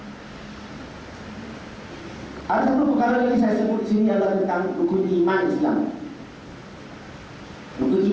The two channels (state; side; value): identical; both; correlation 1.00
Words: Ada satu perkara lagi saya sebut di sini adalah tentang rukun iman Islam. Rukun